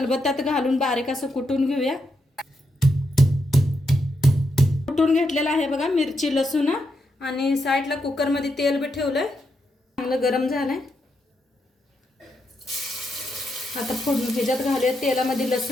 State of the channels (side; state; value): both; normal; correlation 0.82